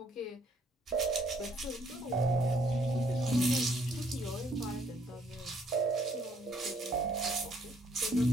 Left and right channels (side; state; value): both; normal; correlation 0.66